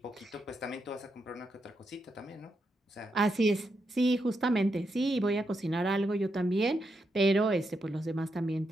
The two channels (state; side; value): normal; both; correlation 0.83